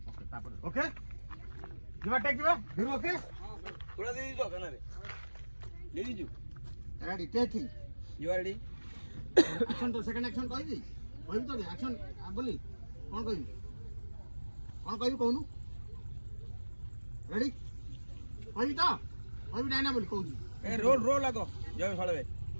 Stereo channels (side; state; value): both; inverted; correlation -1.00